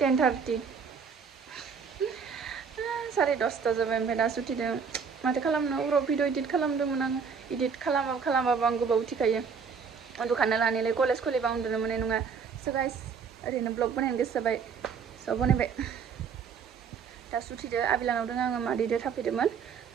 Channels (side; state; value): left; quieter; 6.1 dB